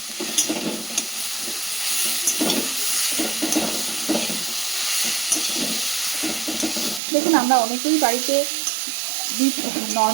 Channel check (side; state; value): left; drops out; at 7.0 s